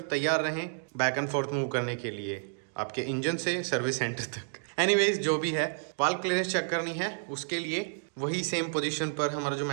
तैयार रहें बैक एंड फोर्थ मूव करने के लिए आपके इंजन से सर्विस सेंटर तक। एनीवेज जो भी है, वाल्व क्लियरेंस चेक करनी है उसके लिए वही सेम पोजीशन पर हमारा जो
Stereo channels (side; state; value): left; silent; digital silence